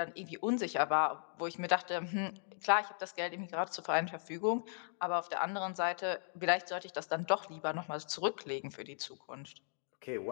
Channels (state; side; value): silent; right; digital silence